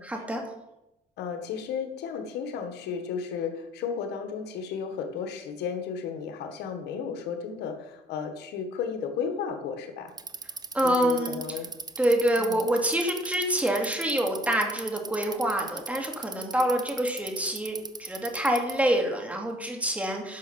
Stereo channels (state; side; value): normal; both; correlation 0.58